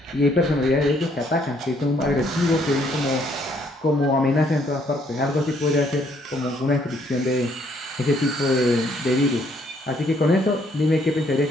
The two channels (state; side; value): normal; both; correlation 0.67